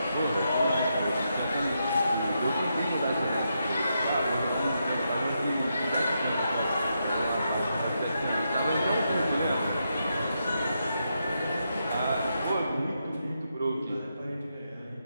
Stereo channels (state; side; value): inverted; both; correlation -0.83